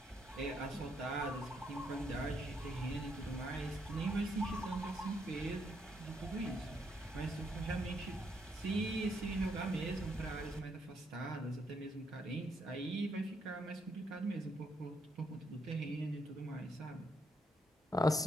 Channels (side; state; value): both; normal; correlation 0.76